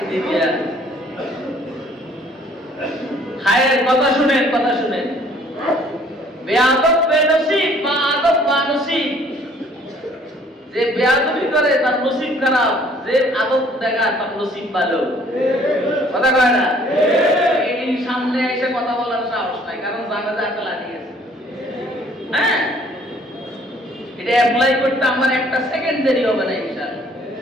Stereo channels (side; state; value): both; normal; correlation 0.58